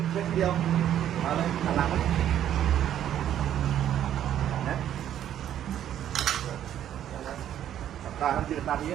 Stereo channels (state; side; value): quieter; left; 10.8 dB